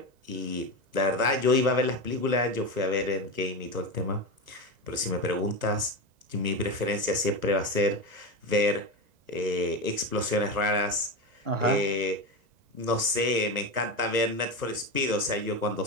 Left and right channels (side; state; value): left; late; 1.2 ms